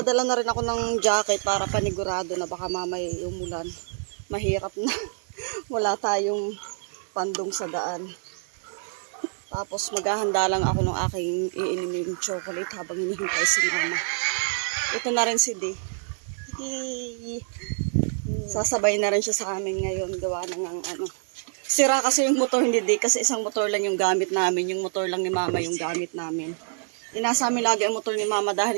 na rin ako ng jacket para panigurado na baka mamay umulan. Mahirap na. Wala tayong pandong sa daan. Tapos maghahanda lang ako ng aking iiniming chocolate habang hinihintay si mama. Ito na rin si D. Sasabay na rin siya sa amin ngayon. Gawa na ng ano. Sira kasi yung motor ni D kasi isang motor lang yung gamit namin. Yung motor lang ni mama yung gamit namin. Inasa amin lagi ang motor ni mama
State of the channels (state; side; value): silent; left; 58 dB below the other